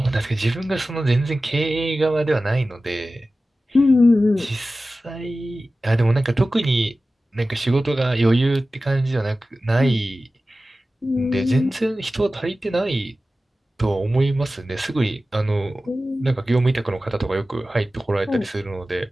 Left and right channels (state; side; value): normal; both; correlation 0.95